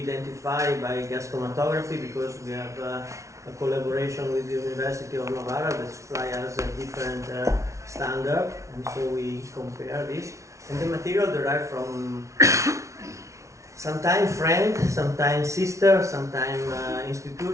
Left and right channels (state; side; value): late; left; 0.14 ms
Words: identify by gas chromatography, because we have a collaboration with the University of Novara that supply us a different standard, and so we compare this. And the material derived from sometimes friend, sometimes sister, sometimes